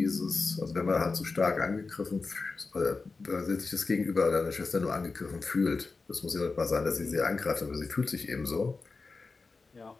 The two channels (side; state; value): right; quieter; 4.1 dB